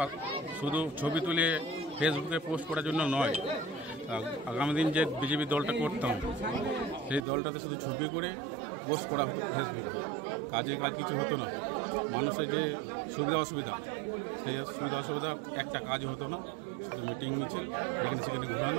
শুধু ছবি তুলে ফেসবুকে পোস্ট করার জন্য নয়। আগামী দিন যে বিজেপি দলটা করতাম, সেই দলটাতে শুধু ছবি করে পোস্ট করা হতো ফেসবুকে, কাজে কাজ কিছু হতো না। মানুষের যে সুবিধা অসুবিধা, সেই সুবিধা অসুবিধা একটা কাজ হতো না, শুধু মিটিং মিছিল এখানে সেখানে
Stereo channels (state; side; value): drops out; left; at 7.2 s